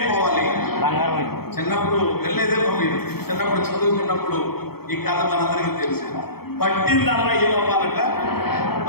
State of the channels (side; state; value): right; late; 0.95 ms